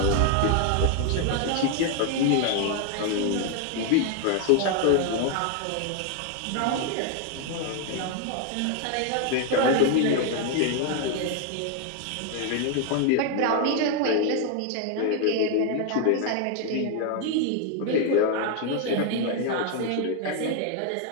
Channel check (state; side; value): different; both; correlation 0.00